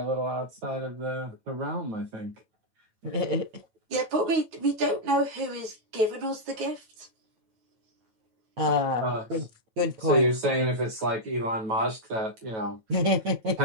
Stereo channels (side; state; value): left; late; 9.1 ms